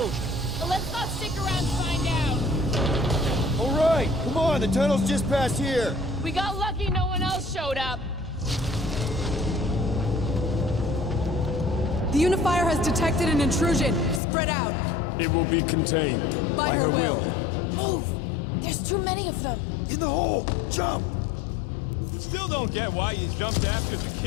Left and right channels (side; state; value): right; drops out; at 14.2 s